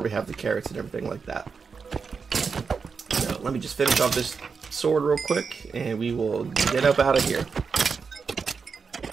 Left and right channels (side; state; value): left; quieter; 5.4 dB